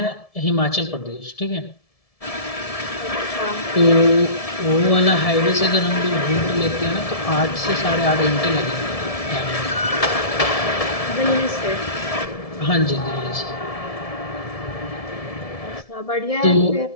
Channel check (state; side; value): late; right; 1.7 ms